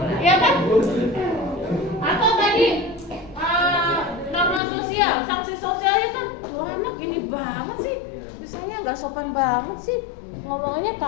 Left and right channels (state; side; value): drops out; right; at 4.6 s